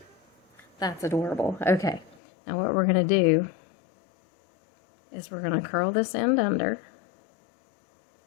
That's adorable. Okay. Now what we're going to do is we're going to curl this end under.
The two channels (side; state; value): right; drops out; at 2.2 s